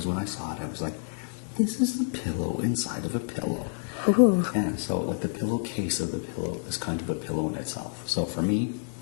when I saw it, I was like, this is a pillow inside of a pillow. Ooh. Yeah, so like the pillowcase of the pillow is kind of a pillow in itself. So for me,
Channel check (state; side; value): silent; right; 59 dB below the other